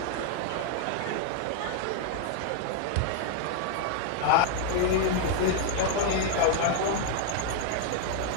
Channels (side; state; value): both; different; correlation 0.01